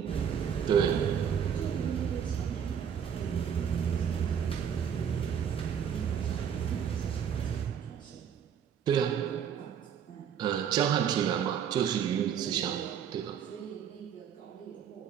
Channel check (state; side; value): quieter; left; 8.2 dB